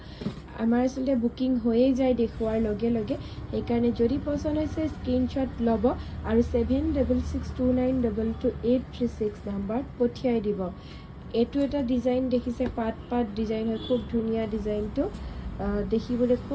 আমাৰ আসলে বুকিং হৈয়ে যায় দেখুৱাৰ লগে লগে, সেইকাৰণে যদি পছন্দ হৈছে স্ক্ৰিনশ্বট ল'ব আৰু 7662922836 নম্বৰত পঠিয়াই দিব। এইটো এটা ডিজাইন দেখিছে, পাট পাট ডিজাইন হয়, খুব ধুনীয়া ডিজাইনটো, দেখিবলৈ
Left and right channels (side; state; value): both; identical; correlation 1.00